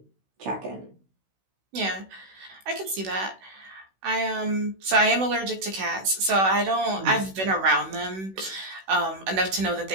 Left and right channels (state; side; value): late; left; 16 ms